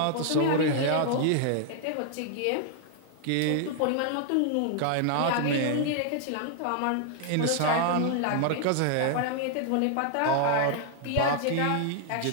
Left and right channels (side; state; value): both; different; correlation 0.00